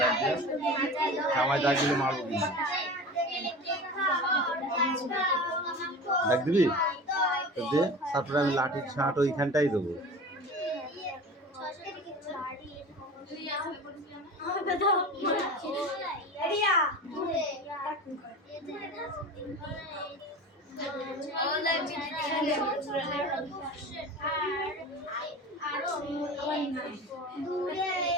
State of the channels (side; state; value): both; normal; correlation 0.34